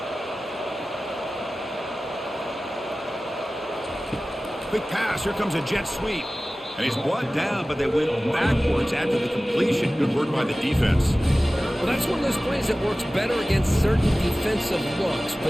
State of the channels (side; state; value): both; normal; correlation 0.97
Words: Quick pass. Here comes a jet sweep. And he's brought down, but they went backwards after the completion. Good work by the defense. Well, that's one of those plays that works better against certain defensive looks,